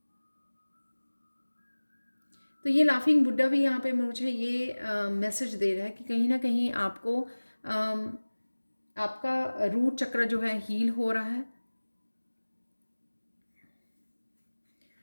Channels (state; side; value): inverted; both; correlation -1.00